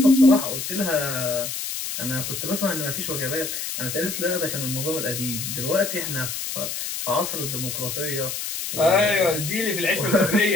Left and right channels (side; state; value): left; noise; hiss, 5 dB below the sound